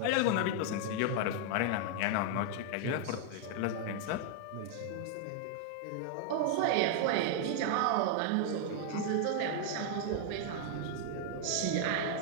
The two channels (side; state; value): both; different; correlation 0.00